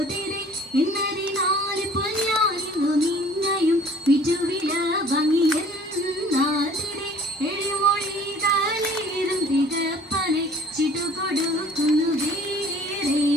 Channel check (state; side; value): normal; both; correlation 0.51